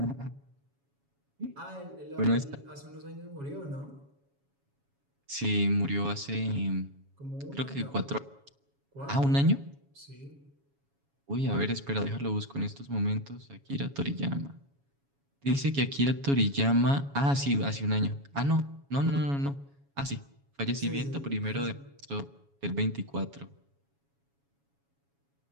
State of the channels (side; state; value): left; late; 7.2 ms